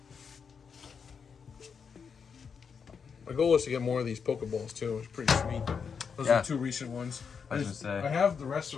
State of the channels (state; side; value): quieter; right; 6.2 dB